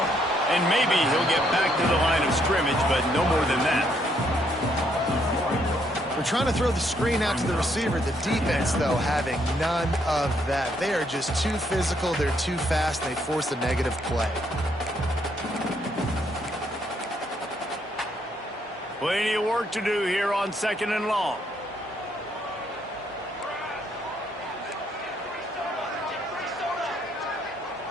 And maybe he'll get back to the line of scrimmage, but no more than that. We're trying to throw the screen out to the receiver. The defense, though, having none of that. They are just too physical. They're too fast. They force a negative play. Plenty of work to do here on 2nd and long.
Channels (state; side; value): normal; both; correlation 0.72